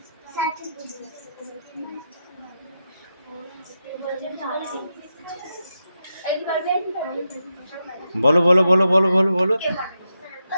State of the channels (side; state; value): both; inverted; correlation -0.86